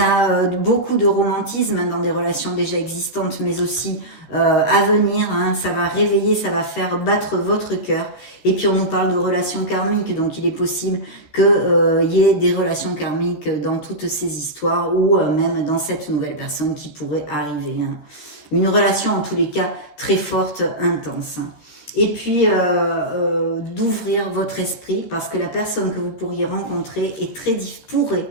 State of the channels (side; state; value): right; late; 13 ms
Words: beaucoup de romantisme dans des relations déjà existantes, mais aussi à venir. Ça va réveiller, ça va faire battre votre cœur. Et puis on nous parle de relations karmiques, donc il est possible qu'il y ait des relations karmiques dans toutes ces histoires ou même dans cette nouvelle personne qui pourrait arriver. Une relation en tous les cas très forte, intense. Et puis d'ouvrir votre esprit parce que la personne que vous pourriez rencontrer